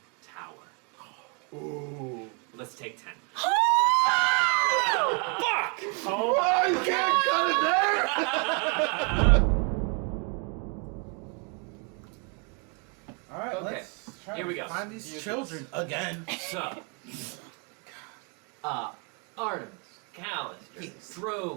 tower. Ooh. Let's take 10. Oh, you can't cut it there! All right, Okay, let's try here we to go. find these children again. So, Artemis, Callister, Yes.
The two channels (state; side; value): quieter; left; 36.2 dB